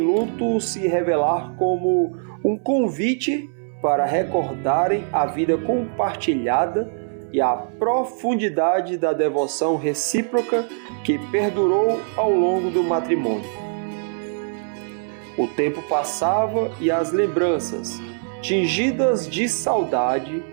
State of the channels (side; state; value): left; silent; 62 dB below the other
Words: luto se revelar como um convite para recordarem a vida compartilhada e a profundidade da devoção recíproca que perdurou ao longo do matrimônio. O tempo passava e as lembranças, tingidas de saudade,